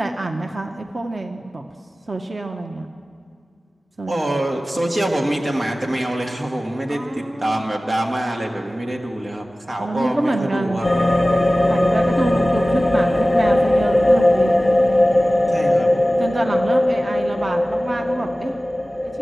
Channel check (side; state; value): both; normal; correlation 0.97